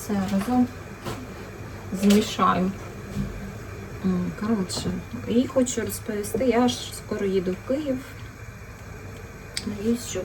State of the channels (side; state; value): both; identical; correlation 1.00